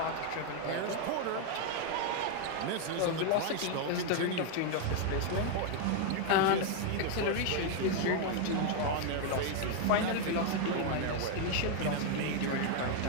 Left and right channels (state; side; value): different; both; correlation 0.01